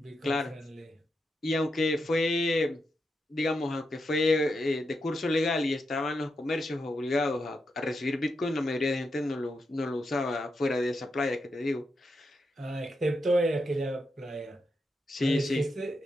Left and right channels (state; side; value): normal; both; correlation 0.85